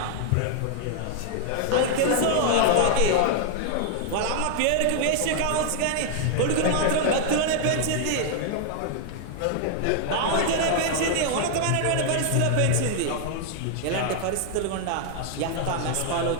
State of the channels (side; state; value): both; different; correlation 0.00